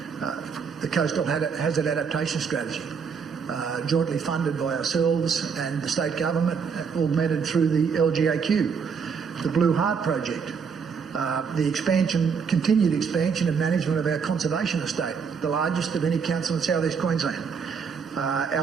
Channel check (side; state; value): left; quieter; 6.1 dB